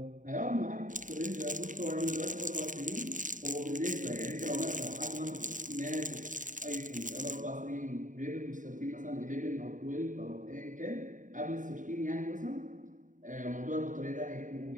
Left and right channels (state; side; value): late; left; 0.37 ms